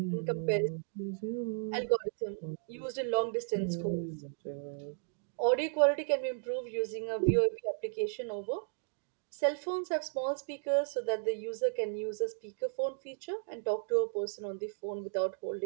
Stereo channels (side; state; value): left; silent; digital silence